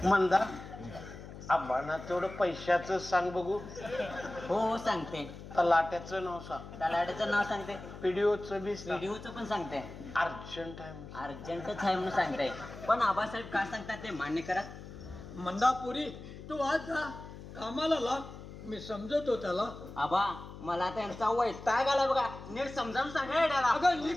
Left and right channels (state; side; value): noise; left; hum, 13 dB below the sound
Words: मंदा आबांना तेवढं पैशाचं सांग बघू. हो सांगते. तलाट्याचं नाव सांग. तलाट्याचं नाव सांगते. पीडीओचं बी सांग. व्हिडिओचं पण सांगते. अर्जंट आहे म्हणून. अर्जंटच आहे म्हणून सांगते. पण आबासाहेब काय सांगतात ते मान्य करा. मंदापुरी तू आज जा कामाला लाग. मी समजतो त्याला. आबा मला त्यांचा वैताग आला बघा. नीट समजावून सांगा येड्याला. अगं